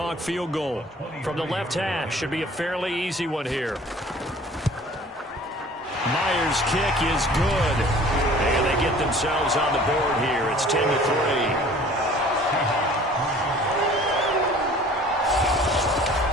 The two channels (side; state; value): both; normal; correlation 0.49